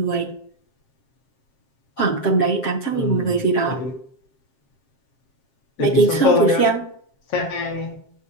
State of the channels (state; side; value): late; right; 7.5 ms